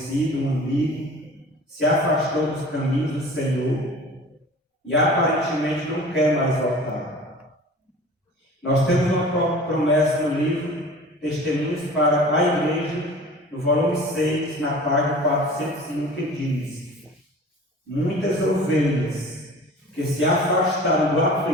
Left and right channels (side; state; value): both; normal; correlation 0.42